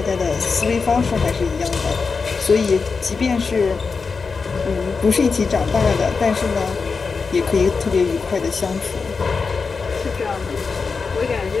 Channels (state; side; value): quieter; right; 4.9 dB